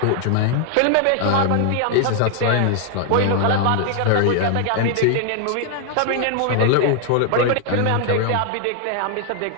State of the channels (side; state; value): both; different; correlation 0.00